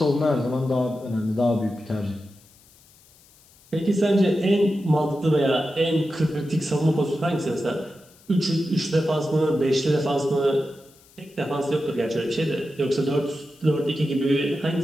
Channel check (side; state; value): left; noise; hiss, 28 dB below the sound